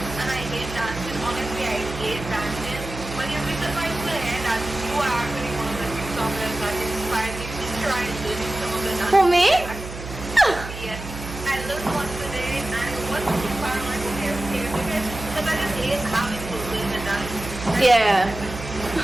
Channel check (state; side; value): noise; right; hum, 10 dB below the sound